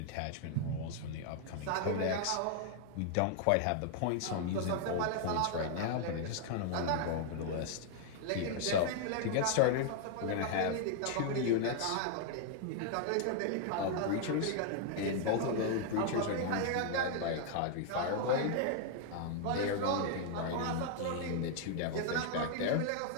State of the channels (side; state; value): both; different; correlation 0.00